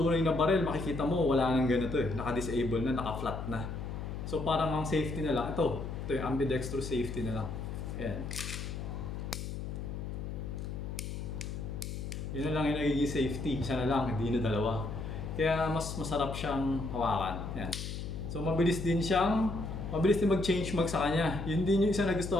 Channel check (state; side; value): noise; left; hum, 6 dB below the sound